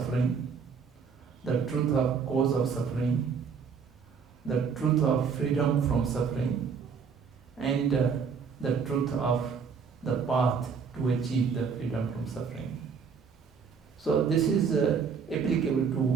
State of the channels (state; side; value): quieter; left; 6.0 dB